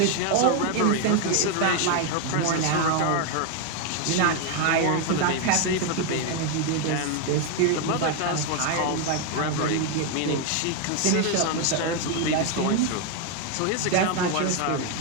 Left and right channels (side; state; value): both; different; correlation 0.01